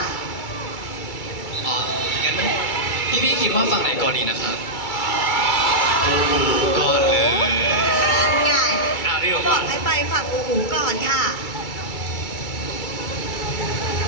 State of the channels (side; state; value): right; late; 2.3 ms